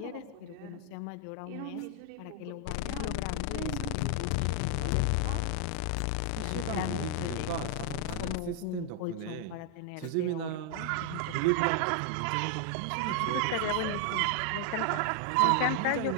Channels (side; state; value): both; different; correlation 0.00